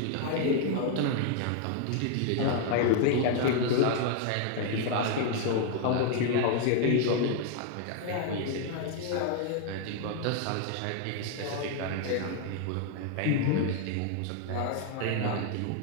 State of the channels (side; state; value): both; different; correlation 0.00